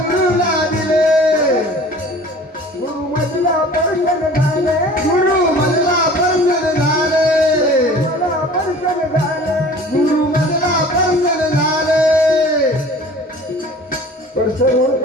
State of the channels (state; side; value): normal; both; correlation 0.45